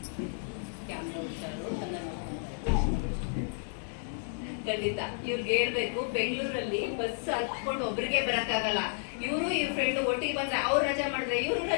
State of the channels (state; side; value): silent; right; digital silence